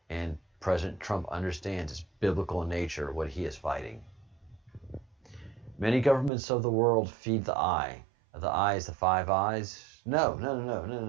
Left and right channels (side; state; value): left; drops out; at 6.3 s